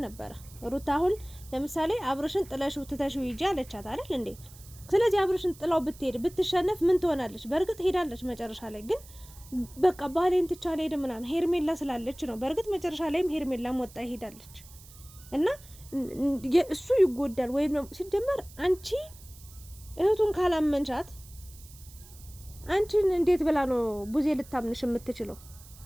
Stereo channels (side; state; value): right; noise; hiss, 21 dB below the sound